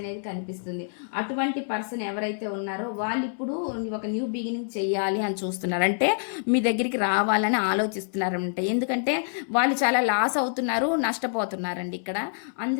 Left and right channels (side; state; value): right; silent; 60 dB below the other